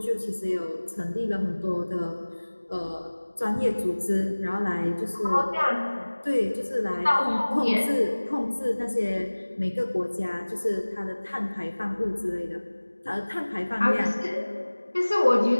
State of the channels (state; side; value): inverted; both; correlation -1.00